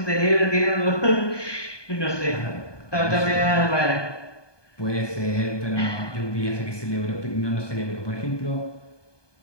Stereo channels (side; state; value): right; late; 1.2 ms